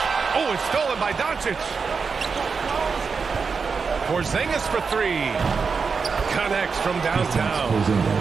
Oh, it's stolen by Doncic. Porzingis for 3. Connects from downtown.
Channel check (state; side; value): quieter; left; 5.3 dB